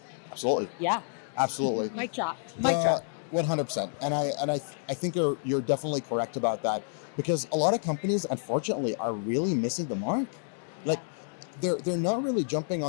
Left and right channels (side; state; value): right; silent; digital silence